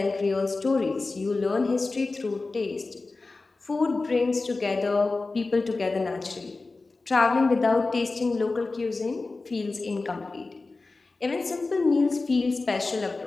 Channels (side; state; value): right; quieter; 3.6 dB